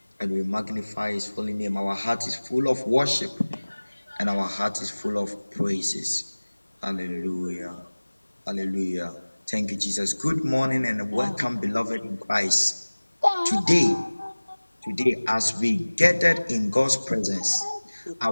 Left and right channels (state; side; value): inverted; both; correlation -1.00